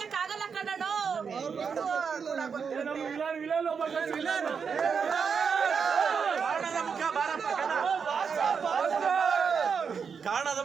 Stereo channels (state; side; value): quieter; left; 6.2 dB